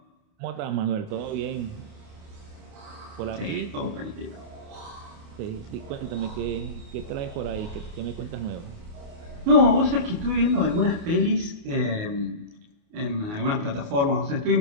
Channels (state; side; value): late; left; 29 ms